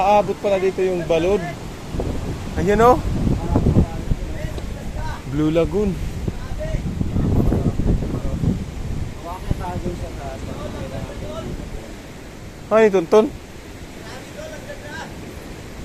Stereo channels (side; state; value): both; identical; correlation 1.00